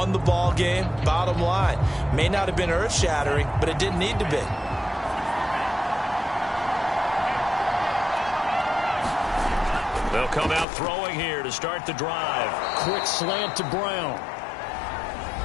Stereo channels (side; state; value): right; drops out; at 10.7 s